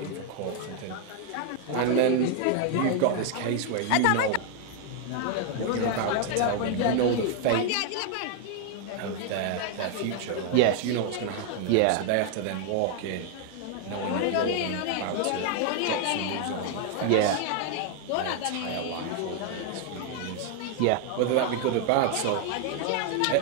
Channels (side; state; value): both; different; correlation 0.00